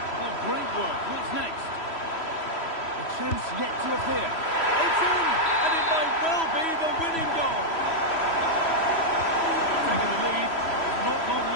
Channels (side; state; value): right; late; 3.1 ms